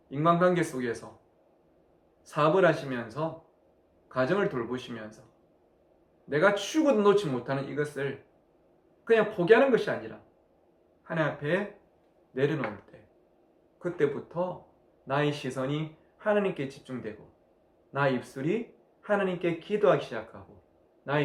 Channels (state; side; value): identical; both; correlation 1.00